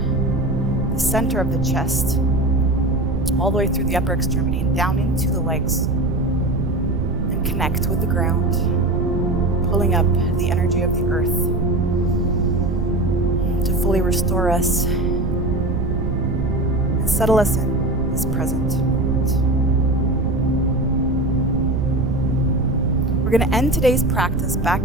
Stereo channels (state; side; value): noise; right; rumble, 3 dB below the sound